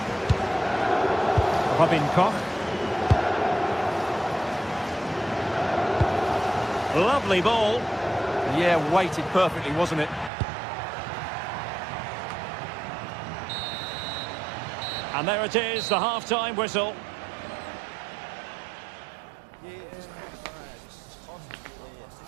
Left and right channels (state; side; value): drops out; left; at 10.3 s